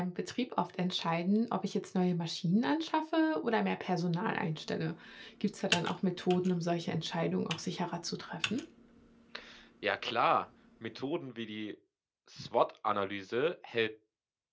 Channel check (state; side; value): identical; both; correlation 1.00